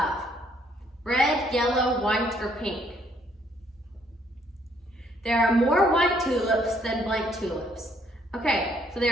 Red, yellow, white, or pink? There are more white tulips than blank tulips. Okay, so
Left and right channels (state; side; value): normal; both; correlation 0.67